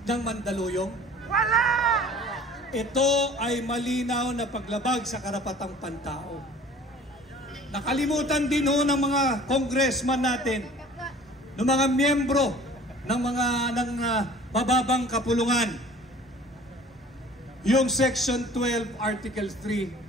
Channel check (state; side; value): normal; both; correlation 0.47